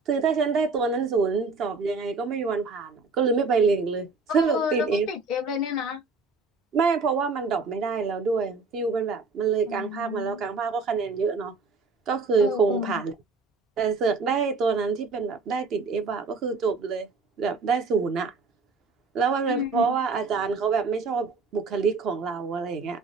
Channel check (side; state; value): left; quieter; 4.1 dB